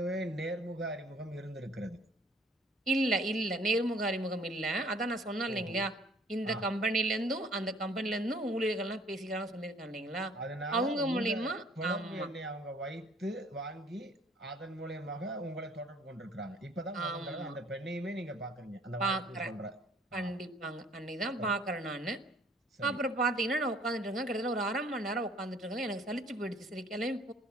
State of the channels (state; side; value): normal; both; correlation 0.57